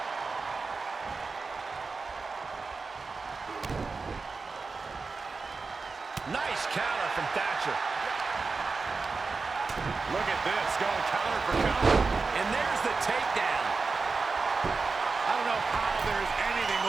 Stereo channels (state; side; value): quieter; left; 4.3 dB